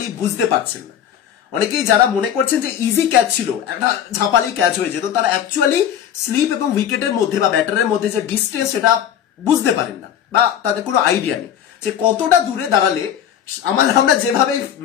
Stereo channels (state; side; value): quieter; right; 9.7 dB